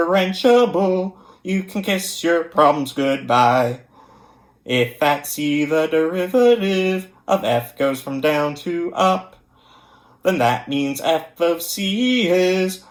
you can kiss your problems goodbye. If at C the derivative of F goes from down to up, then that means F of C is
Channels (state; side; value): identical; both; correlation 1.00